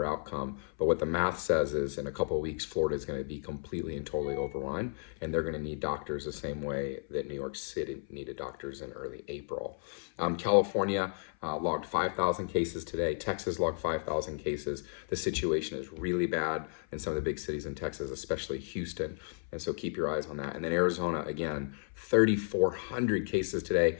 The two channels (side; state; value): right; silent; 56 dB below the other